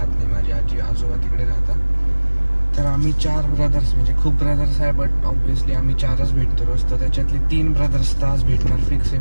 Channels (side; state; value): both; inverted; correlation -1.00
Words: नाही, माझी आजी आजोबा तिकडे राहतात. तर आम्ही 4 ब्रदर्स, म्हणजे खूप ब्रदर्स आहे बट ऑब्व्हियसली आम्ही 4च भेटतो रोज. तर त्याच्यातले 3 ब्रदर्स तर आज भेटणार फिक्स आहे,